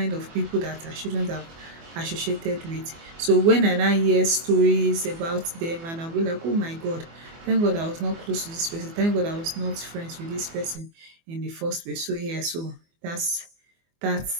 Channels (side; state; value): left; late; 24 ms